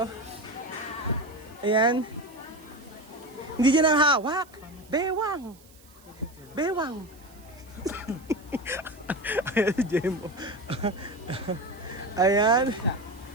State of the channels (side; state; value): right; noise; hiss, 26 dB below the sound